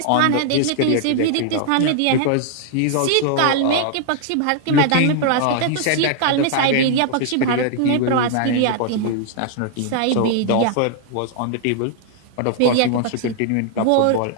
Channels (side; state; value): both; different; correlation -0.01